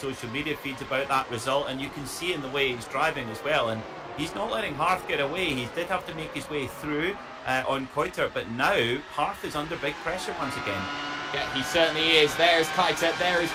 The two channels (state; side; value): identical; both; correlation 1.00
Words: media feeds about that result, and you can see in the way he's driving as well. And he's not letting Harth get away. He did have to make his way through on Keitel, but now Harth is under big pressure once again. Yeah, he certainly is. There's Keitel, there is